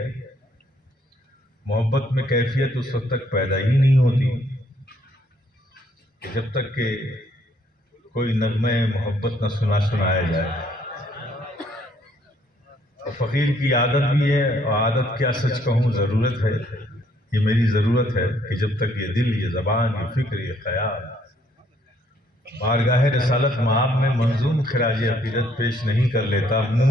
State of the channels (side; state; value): both; normal; correlation 0.67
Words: محبت میں کیفیت اس وقت تک پیدا ہی نہیں ہوتی کہ جب تک کہ کوئی نغمہ محبت نہ سنایا جائے، اور فقیر کی عادت بھی ہے، اور عادت کیا سچ کہوں ضرورت ہے، یہ میری ضرورت ہے کہ جب تک یہ دل، یہ زبان، یہ فکر، یہ خیال بارگاہ رسالت مآب میں منظوم خراج عقیدت پیش نہیں کر لیتا،